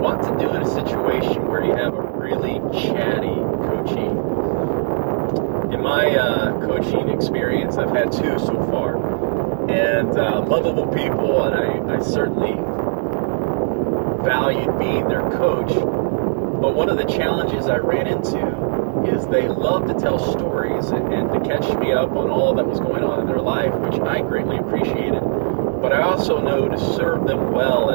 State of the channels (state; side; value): silent; left; digital silence